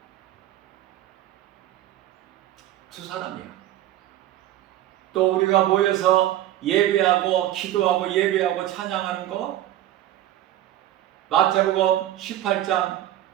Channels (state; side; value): quieter; left; 13.3 dB